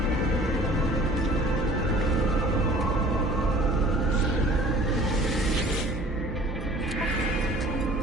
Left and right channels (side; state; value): both; normal; correlation 0.48